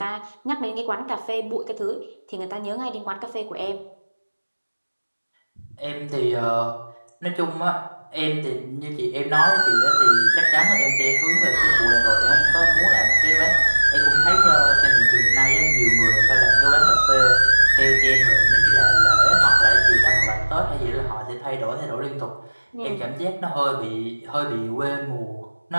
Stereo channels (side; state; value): both; inverted; correlation -1.00